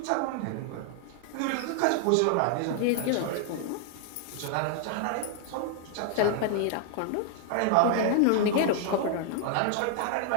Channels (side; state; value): both; different; correlation 0.00